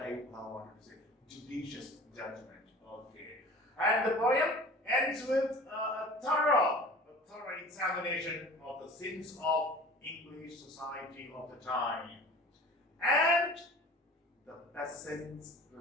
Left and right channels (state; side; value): normal; both; correlation 0.42